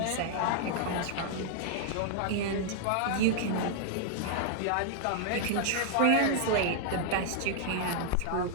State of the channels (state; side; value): different; both; correlation -0.01